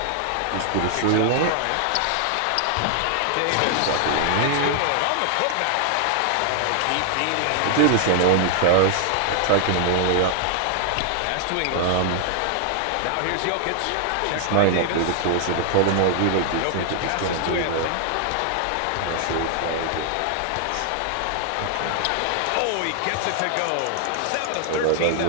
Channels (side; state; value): both; different; correlation 0.00